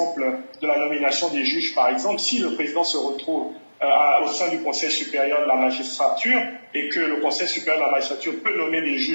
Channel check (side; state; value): both; inverted; correlation -1.00